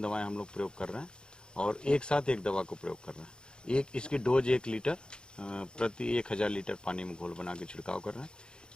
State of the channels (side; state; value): right; late; 0.049 ms